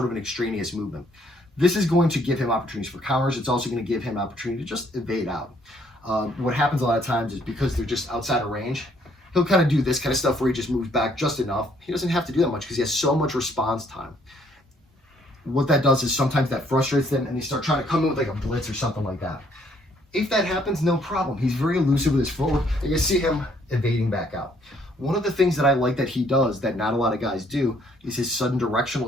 of an extraneous movement. This is going to give him opportunities for counters. It's also going to give him opportunity to just evade out. What happens a lot of times is because they're just outside of range, he'll kind of do this kind of stuff where he just moves back just enough. He doesn't have to do that much because he has so much response time. What that does is sometimes that frustrates them and they start trying to come in with like a blitz or something like that. If that happens, no problem. He's very elusive with his footwork. And you see him evading back out. One of the things that I like that he does that not a lot of guys do is his sudden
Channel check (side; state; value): both; normal; correlation 0.66